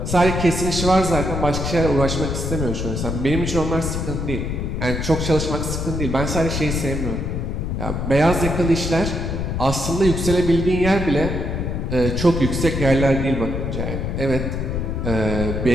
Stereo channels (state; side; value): noise; left; rumble, 2 dB below the sound